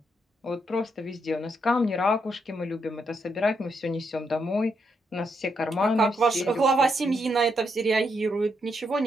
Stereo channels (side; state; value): both; normal; correlation 0.78